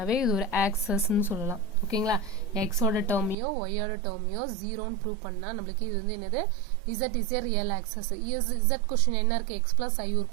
இது ஒரு ஆக்சஸ் ன்னு சொல்லலாம் ஓகேங்களா x ஓட டேர்மையோ y ஓட டேர்மையோ 0 ன்னு ப்ரூவ் பண்ணா நமக்கு இது வந்து என்னது z is a real axis z question என்ன இருக்கு x plus i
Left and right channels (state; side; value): drops out; left; at 3.4 s